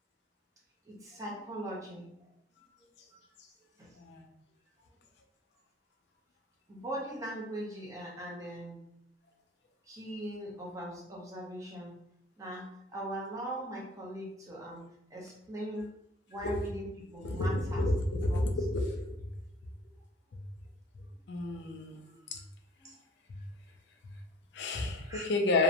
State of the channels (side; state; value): both; normal; correlation 0.46